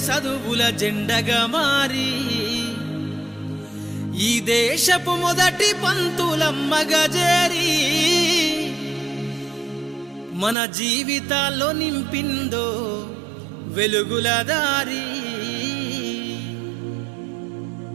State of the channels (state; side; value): drops out; left; at 10.6 s